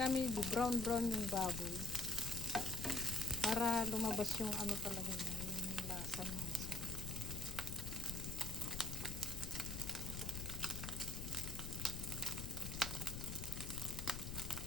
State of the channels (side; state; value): left; noise; rumble, 5 dB below the sound